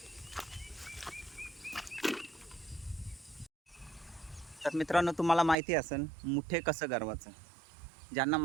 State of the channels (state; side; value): drops out; left; at 5.6 s